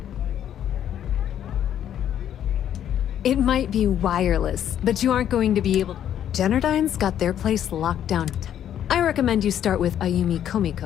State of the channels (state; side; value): quieter; right; 10.3 dB